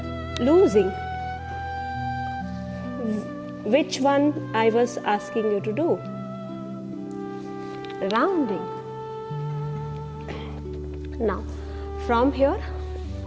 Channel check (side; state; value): both; identical; correlation 1.00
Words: losing. Which one I was asking you to do? Rounding. Now from here,